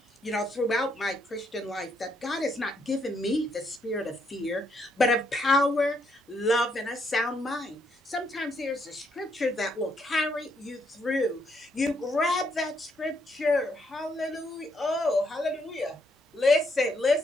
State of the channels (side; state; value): both; normal; correlation 0.74